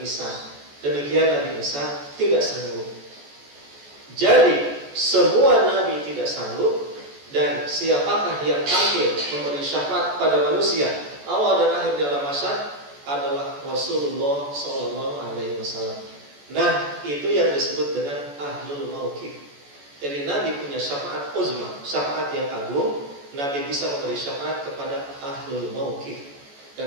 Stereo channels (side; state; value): left; late; 14 ms